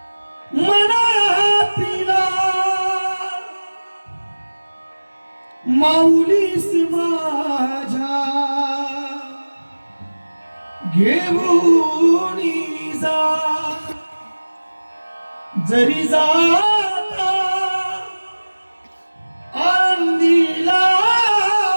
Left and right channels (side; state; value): both; inverted; correlation -1.00